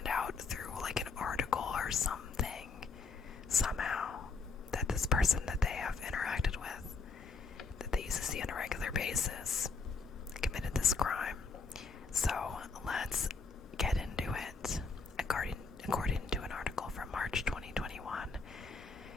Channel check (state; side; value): quieter; right; 4.6 dB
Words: out through like an article or something, somehow, that this person that they have interacted with, that they used to see on a regular basis, committed this crime. So let's get into it. According to an article from March 2021,